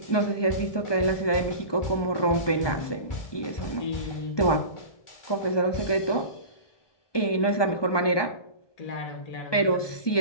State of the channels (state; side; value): late; right; 1.2 ms